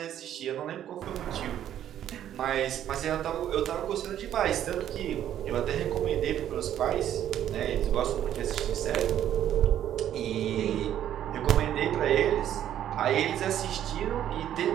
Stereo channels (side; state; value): left; quieter; 10.9 dB